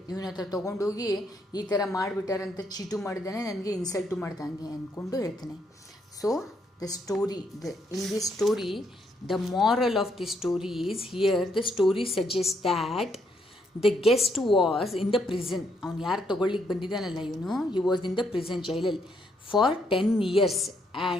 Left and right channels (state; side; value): normal; both; correlation 0.74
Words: ಇವನ ಹತ್ರ ತೊಗೊಂಡೋಗಿ ಈ ಥರ ಮಾಡಿಬಿಟ್ಟಾರಂತ ಚೀಟು ಮಾಡಿದ್ದಾನೆ, ನನಗೆ ಇನ್ಸಲ್ಟು ಮಾಡ್ದಂಗೆ ಅಂದ್ಕೊಂಡು ಹೇಳ್ತಾನೆ. So in this story, the moral of the story is, here the story suggests that the guest was in the prison. ಅವನು ಯಾರು ತೊಗೊಳ್ಳಿಕ್ಕೆ ಬಂದಿದ್ದಾನಲ್ಲ ಇವನು, he was in the prison ಜೈಲಲ್ಲಿ for 10 years